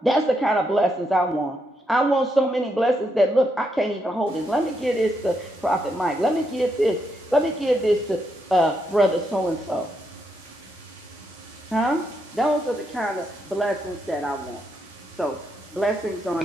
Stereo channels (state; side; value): normal; both; correlation 0.79